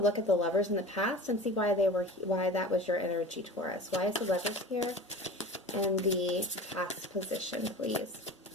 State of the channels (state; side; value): normal; both; correlation 0.35